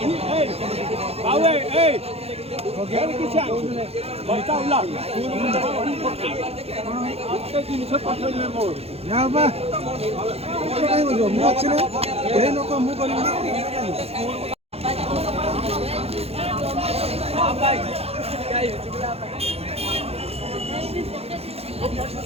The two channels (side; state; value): left; late; 0.29 ms